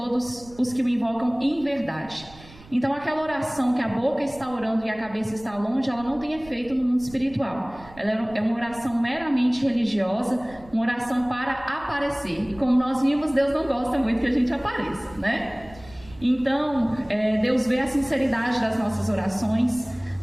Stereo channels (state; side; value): noise; right; rumble, 21 dB below the sound